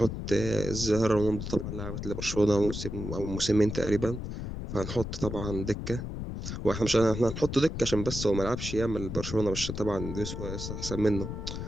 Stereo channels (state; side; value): noise; left; rumble, 6 dB below the sound